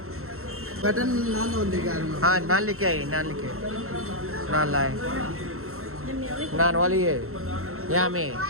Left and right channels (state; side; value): late; left; 0.63 ms